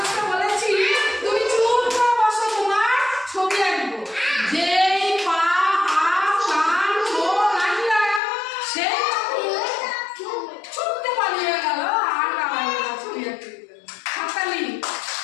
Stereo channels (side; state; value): right; drops out; at 8.2 s